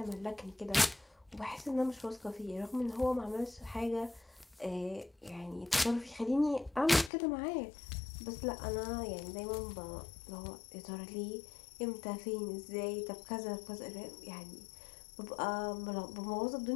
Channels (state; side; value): drops out; right; at 7.1 s